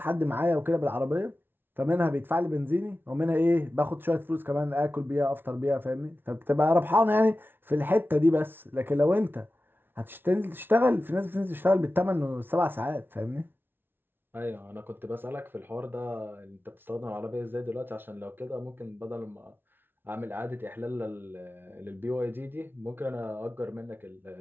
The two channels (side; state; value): left; late; 0.10 ms